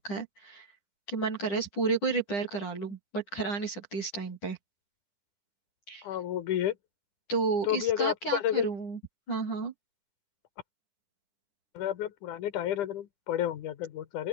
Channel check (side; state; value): right; late; 10 ms